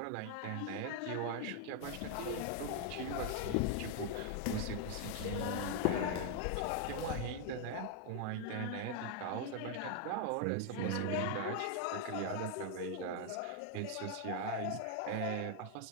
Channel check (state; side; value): different; both; correlation 0.00